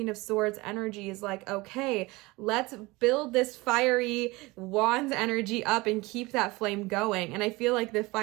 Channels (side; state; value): left; quieter; 22.5 dB